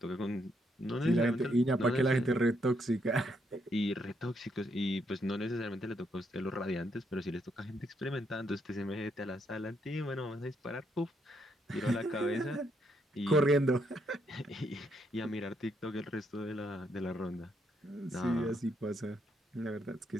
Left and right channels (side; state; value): both; normal; correlation 0.76